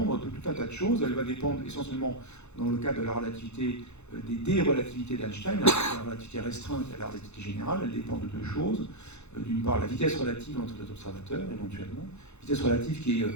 de tout un tas de choses. Elle va dépendre essentiellement, dans le cas de la relativité, des dérelativités d'Einstein, la relativité restreinte et la relativité générale. Elle dépend de deux choses. D'une part, la vitesse relative entre les observateurs, éventuellement. Vitesse relative qui est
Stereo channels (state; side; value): late; right; 0.81 ms